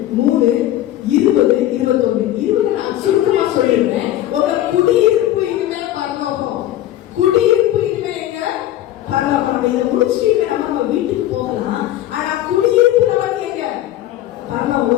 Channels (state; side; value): quieter; right; 13.4 dB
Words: 3:20-21 நான் சுருக்கமா சொல்லிடுறேன். உங்க குடியிருப்பு இனிமே பரலோகம். குடியிருப்பு இனிமே எங்க? பரலோகம். இதை முடிச்சுட்டு நம்ம வீட்டுக்கு போகலாம். ஆனா குடியிருப்பு நமக்கு எங்க? பரலோகம்.